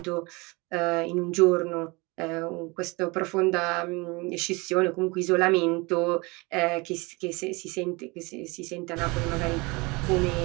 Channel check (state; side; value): quieter; left; 26.0 dB